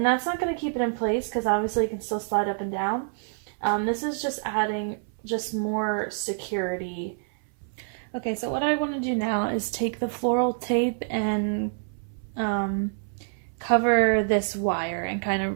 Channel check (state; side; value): silent; left; 60 dB below the other